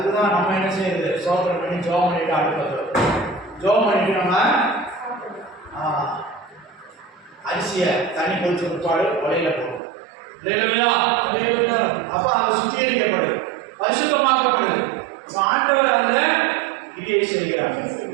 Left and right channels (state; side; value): drops out; left; at 9.8 s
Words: நம்ம என்ன செய்யறது? சோதனை பண்ணி ஜோம் பண்ணிட்டு அடுப்பத்தை ஜோம் பண்ணிட்டு நம்ம அரிசியை தண்ணி கொதிச்ச பிற்பாடு உலையில போடுவோம். அப்ப அது சுத்திகரிக்கப்படுது, பரிசுத்தமாக்கப்படுது. ஆண்டவர் அதில் கிரியை செய்கிறார்.